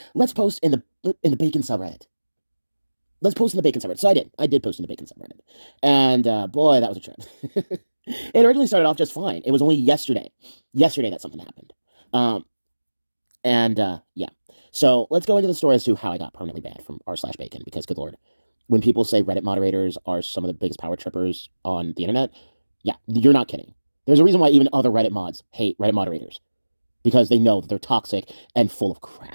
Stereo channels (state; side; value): inverted; both; correlation -1.00